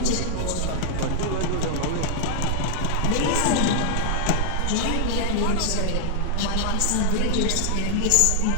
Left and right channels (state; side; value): different; both; correlation -0.01